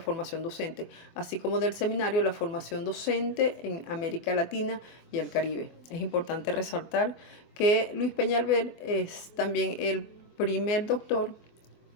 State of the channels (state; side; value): late; right; 24 ms